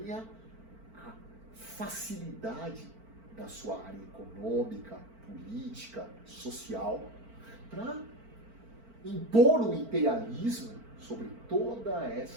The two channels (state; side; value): late; left; 4.5 ms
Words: a facilidade da sua área econômica, política, social, para impor o imperialismo sobre toda